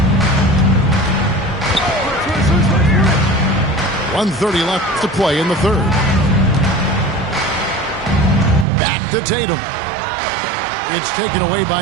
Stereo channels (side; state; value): left; drops out; at 8.7 s